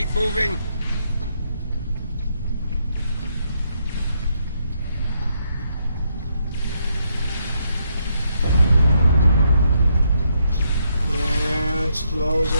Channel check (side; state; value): both; inverted; correlation -0.76